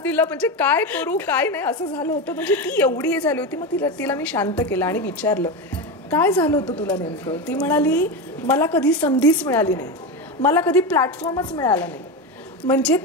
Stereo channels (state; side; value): normal; both; correlation 0.17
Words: म्हणजे काय करू काय नाही असं झालं होतं म्हणजे ती एवढी हे झाली होती मग तिला मी शांत केलं आणि विचारलं काय झालं होतं तुला नेमकं ती म्हणाली मला कधी संधीच मिळाली नाही मला कधी प्लॅटफॉर्मच मिळाला नाही म्हणजे